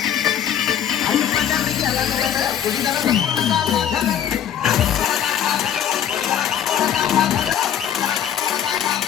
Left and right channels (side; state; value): right; quieter; 9.6 dB